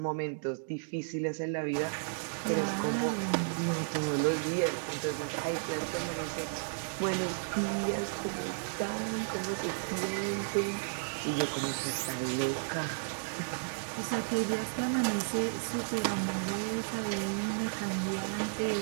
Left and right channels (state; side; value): silent; left; digital silence